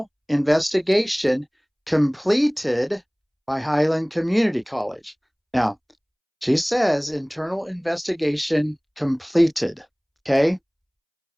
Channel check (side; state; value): both; identical; correlation 1.00